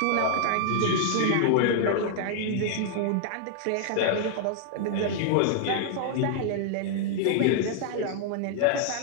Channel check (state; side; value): different; both; correlation -0.01